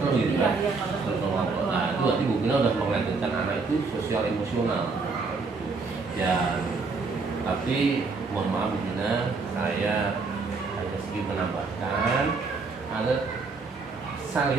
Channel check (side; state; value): left; quieter; 4.3 dB